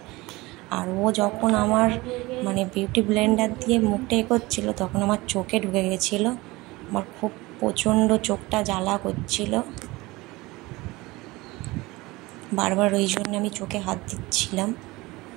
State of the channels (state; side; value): quieter; left; 21.4 dB